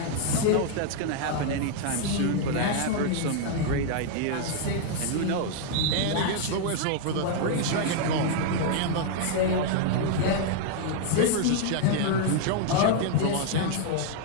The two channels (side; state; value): both; different; correlation 0.00